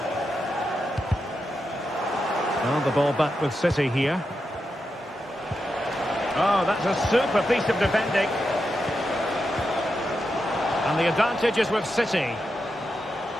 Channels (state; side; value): normal; both; correlation 0.87